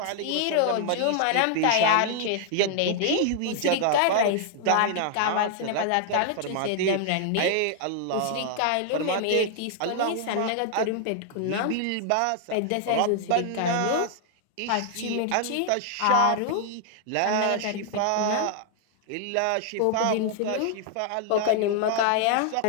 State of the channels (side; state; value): both; different; correlation 0.00